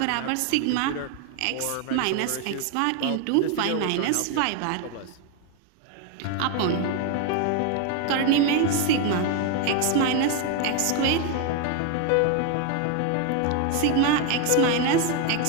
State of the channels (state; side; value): different; both; correlation 0.01